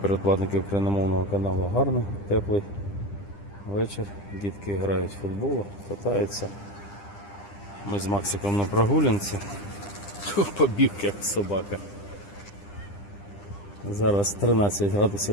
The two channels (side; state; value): right; late; 10 ms